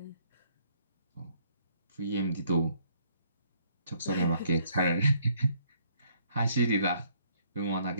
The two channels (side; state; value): both; inverted; correlation -0.66